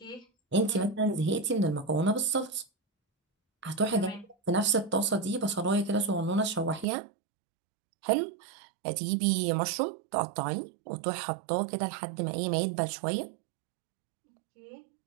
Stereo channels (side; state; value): left; drops out; at 6.9 s